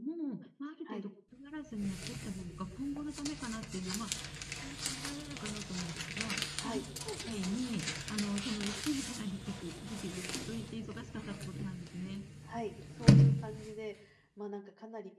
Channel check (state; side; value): identical; both; correlation 1.00